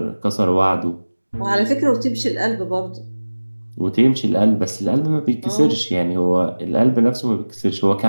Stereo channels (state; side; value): inverted; both; correlation -1.00